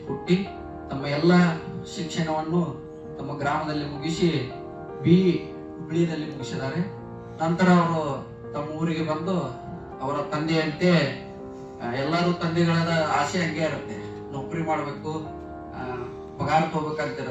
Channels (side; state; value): both; identical; correlation 1.00